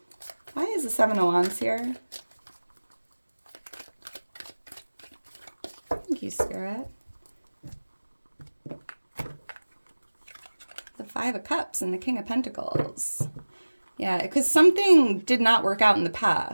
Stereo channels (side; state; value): both; inverted; correlation -1.00